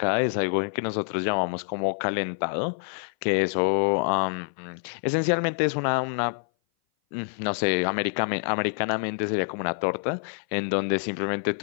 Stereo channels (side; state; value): right; silent; 58 dB below the other